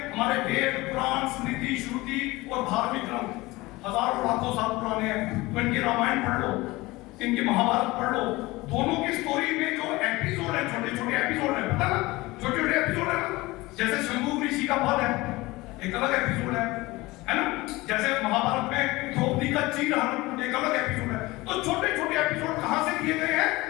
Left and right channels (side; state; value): right; quieter; 20.8 dB